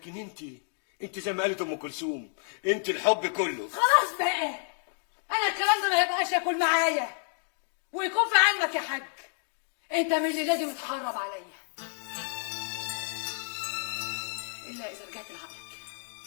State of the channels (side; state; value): right; silent; digital silence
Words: انت زي ما قالت ام كلثوم، انت الحب كله. خلاص بقى، انا الكلام ده ما يبقاش ياكل معايا ويكون في علمك يا حاج، انت من اللي لازم تحرب عليا الا اذا رجعت لعقلك